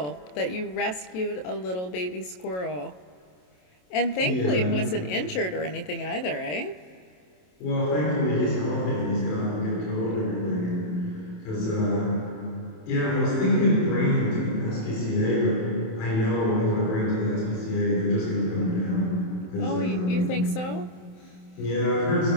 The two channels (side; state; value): right; late; 27 ms